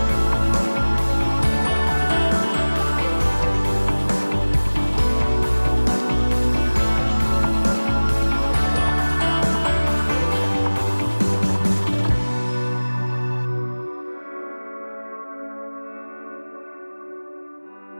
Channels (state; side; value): inverted; both; correlation -1.00